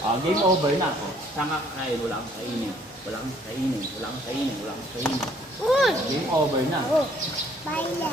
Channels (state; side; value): normal; both; correlation 0.61